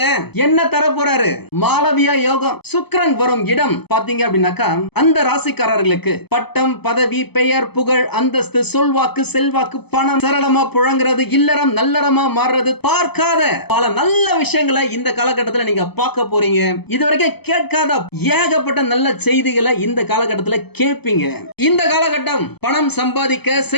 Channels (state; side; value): late; right; 0.98 ms